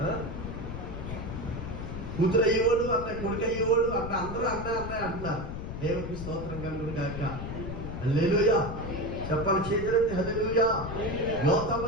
కూతురు అయ్యేవాడు అన్న, కొడుకు అయ్యేవాడు అన్న, అందరూ అన్న అంటున్నారు. దేవునికి స్తోత్రం కలుగును గాక. హల్లెలూయా. చెప్పాలి చేతులెత్తి హల్లెలూయా. యోతాము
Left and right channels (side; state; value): left; noise; rumble, 7 dB below the sound